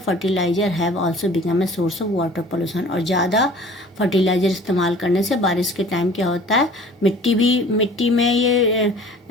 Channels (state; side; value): normal; both; correlation 0.47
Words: have also become a source of water pollution. और ज़्यादा फर्टिलाइज़र इस्तेमाल करने से बारिश के टाइम क्या होता है, मिट्टी में ये